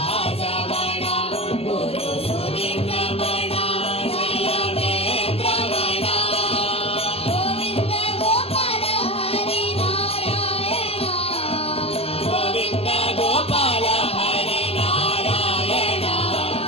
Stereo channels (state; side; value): late; right; 0.29 ms